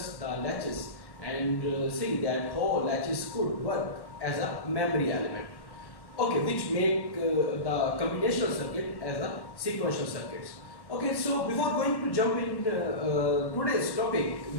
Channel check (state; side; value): late; right; 1.1 ms